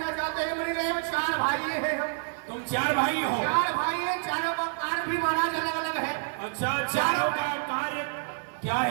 चाहते हैं मुनिदेव। 4 भाई हैं हम। तुम 4 भाई हो? 4 भाई हैं, चारों का कार्य भी महाराज अलग अलग है। अच्छा, चारों का कार्य क्या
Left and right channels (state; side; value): silent; left; digital silence